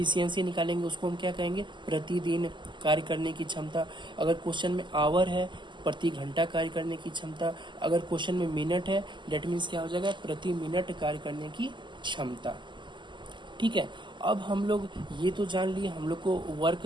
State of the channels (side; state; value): left; late; 0.23 ms